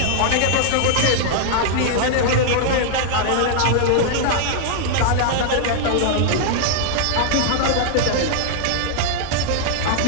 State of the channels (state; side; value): different; both; correlation -0.01